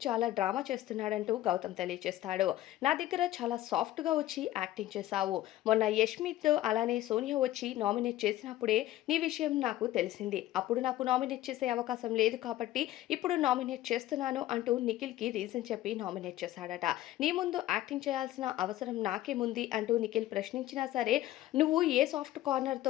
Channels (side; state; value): right; quieter; 14.7 dB